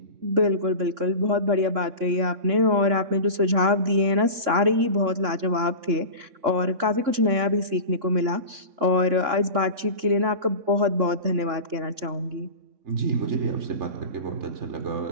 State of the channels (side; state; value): left; late; 3.6 ms